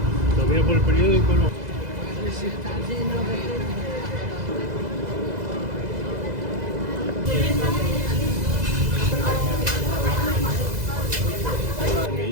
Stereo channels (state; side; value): late; left; 2.0 ms